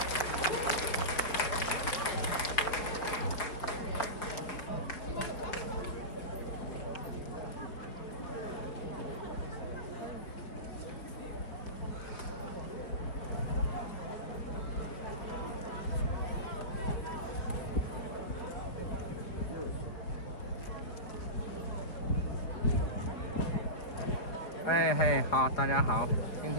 Hey, 好，大家好。今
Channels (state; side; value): late; right; 4.5 ms